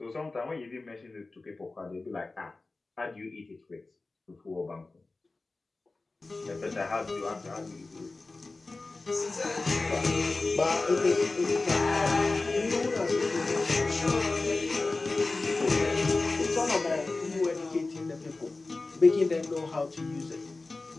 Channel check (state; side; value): quieter; right; 3.4 dB